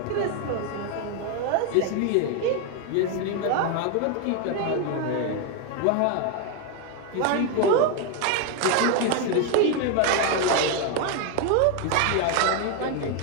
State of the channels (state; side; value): different; both; correlation 0.01